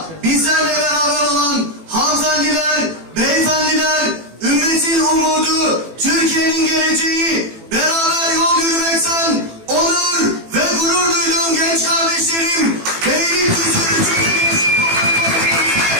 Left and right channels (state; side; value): late; left; 18 ms